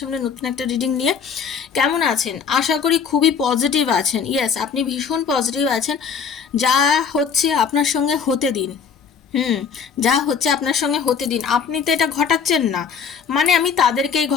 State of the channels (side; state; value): right; quieter; 6.5 dB